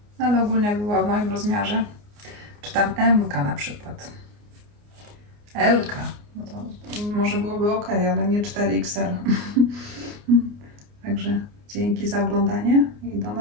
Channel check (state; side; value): late; left; 29 ms